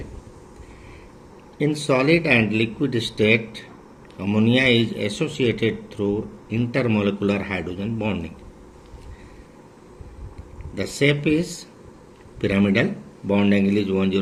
In solid and liquid state, ammonia is associated through intermolecular hydrogen bonding. The shape is pyramidal, bond angle is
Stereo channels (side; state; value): both; identical; correlation 1.00